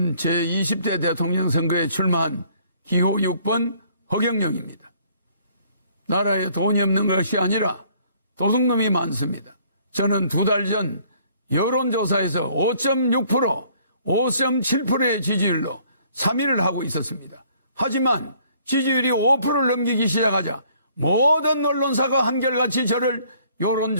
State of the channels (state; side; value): inverted; both; correlation -0.61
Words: 제20대 대통령 선거에 출마한 기호 6번 허경영입니다. 나라에 돈이 없는 것이 아니라 도둑놈이 많습니다. 저는 2달 전 여론조사에서 5.6%, 5.7%의 지지율로 3위를 하고 있었습니다. 하지만 지지율이 5%를 넘기기 시작하자 모든 언론사가 한결같이 저를